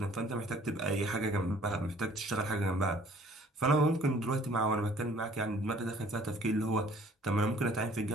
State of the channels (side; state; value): both; normal; correlation 0.56